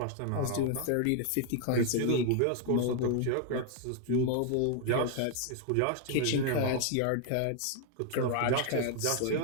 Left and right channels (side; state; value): both; different; correlation 0.00